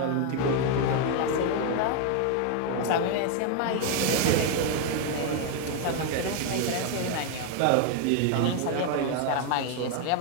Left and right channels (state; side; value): different; both; correlation 0.01